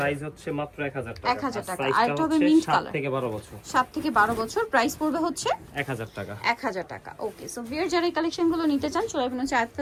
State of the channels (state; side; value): identical; both; correlation 1.00